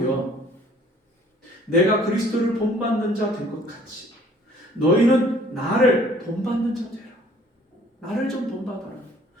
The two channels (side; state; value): both; normal; correlation 0.56